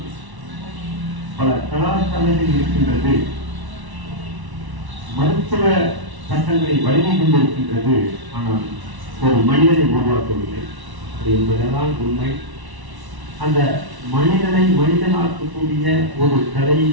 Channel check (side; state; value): left; late; 1.1 ms